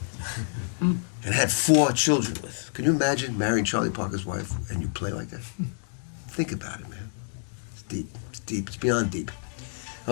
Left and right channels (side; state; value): right; silent; digital silence